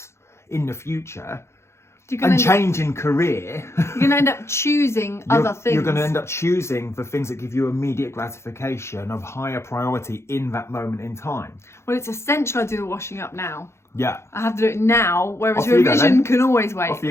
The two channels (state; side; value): late; right; 0.13 ms